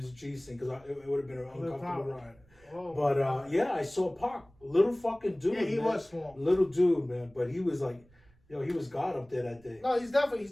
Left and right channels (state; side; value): noise; right; rumble, 29 dB below the sound